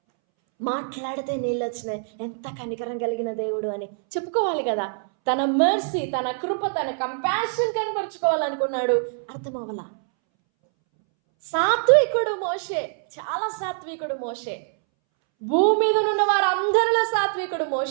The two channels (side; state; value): left; silent; 62 dB below the other